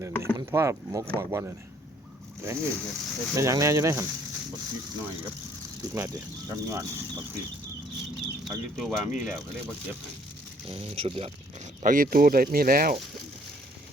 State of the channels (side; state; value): both; normal; correlation 0.62